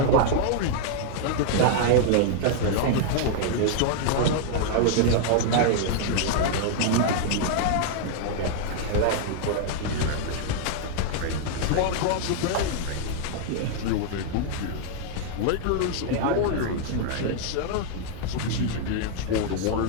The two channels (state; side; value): different; both; correlation 0.00